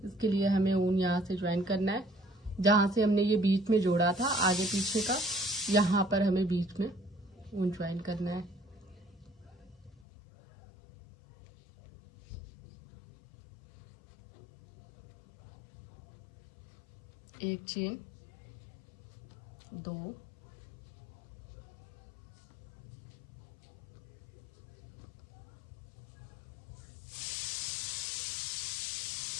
इसके लिए हमें ऊन यहाँ से ज्वाइन करना है। जहाँ से हमने ये बीच में जोड़ा था आगे पीछे का, यहाँ पर हमें बीच में ऊन ज्वाइन करना है। एक चेन, 2,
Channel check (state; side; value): drops out; right; at 10.1 s